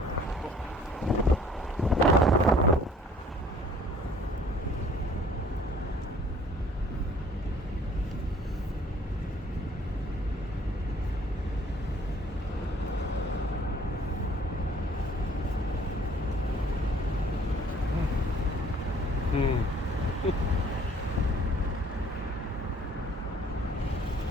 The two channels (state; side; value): normal; both; correlation 0.55